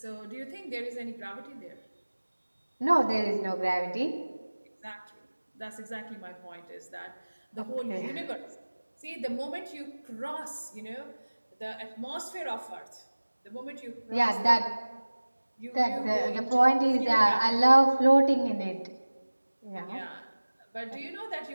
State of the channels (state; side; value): inverted; both; correlation -1.00